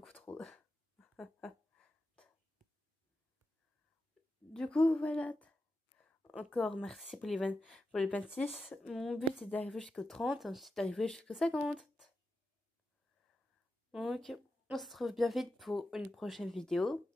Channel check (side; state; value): both; normal; correlation 0.90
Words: trop. Du coup, voilà. Encore merci pour les 26. Mon but c'est d'arriver jusqu'au 30, ensuite d'arriver jusqu'au 50. Donc, on se retrouve bien vite pour une prochaine vidéo.